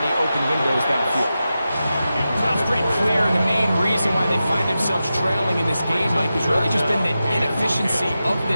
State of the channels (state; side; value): inverted; both; correlation -0.92